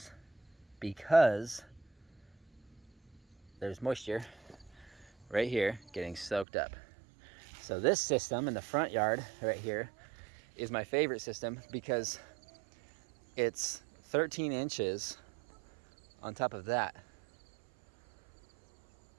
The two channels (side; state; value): left; drops out; at 6.5 s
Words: because there's moisture right here getting soaked up. So this system in the front yard right here is my favorite system because it's 13 inches on top of that.